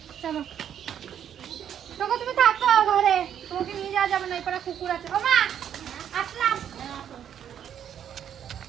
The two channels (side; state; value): left; quieter; 9.3 dB